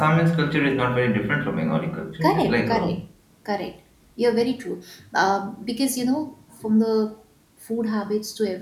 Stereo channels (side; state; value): both; identical; correlation 1.00